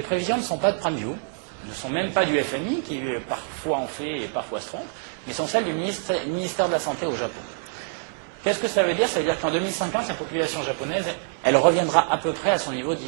prévisions ne sont pas de PrimeView, ne sont même pas du FMI, qui parfois en fait et parfois se trompe, mais sont celles du ministère de la Santé au Japon. Qu'est-ce que ça veut dire? Ça veut dire qu'en 2050, la population japonaise, elle reviendra à peu près à son niveau de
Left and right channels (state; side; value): silent; left; 60 dB below the other